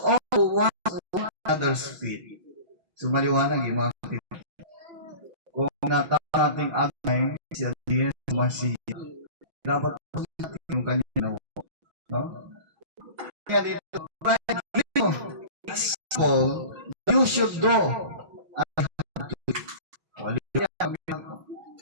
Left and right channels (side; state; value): left; late; 5.9 ms